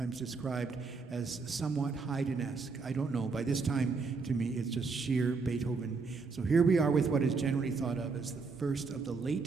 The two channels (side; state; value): left; quieter; 4.5 dB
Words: described as somewhat Haydn-esque. I don't know. By this time, to me, it's just sheer Beethoven. So here we are with what is generally thought of as the first of the